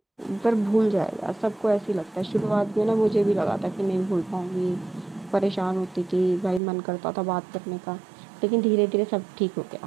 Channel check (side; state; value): left; drops out; at 6.6 s